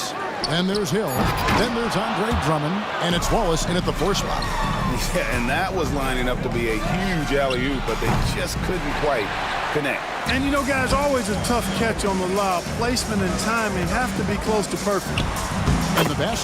Then there's Hill. Then there's Andre Drummond. And it's Wallace in at the 4 spot. Yeah, and that was lining up to be a huge alley-oop, but they just couldn't quite connect. And you know, guys, always a tough catch on the lob. Placement and timing have to be close to perfect. And the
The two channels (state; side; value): identical; both; correlation 1.00